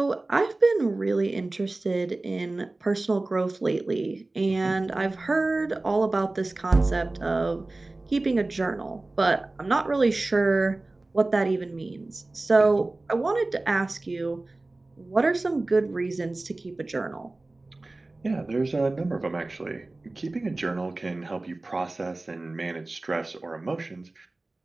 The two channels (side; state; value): left; quieter; 3.0 dB